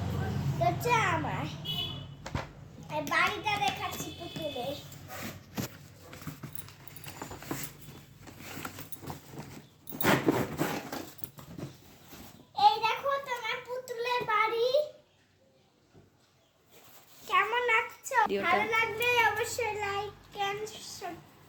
এটা হচ্ছে আমার। আর বাড়িটা দেখাচ্ছি পুতুলের। এই দেখো তোমার পুতুলের বাড়ি। কেমন লাগছে? ভিডিওটা। ভালো লাগলে অবশ্যই লাইক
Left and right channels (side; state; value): both; identical; correlation 1.00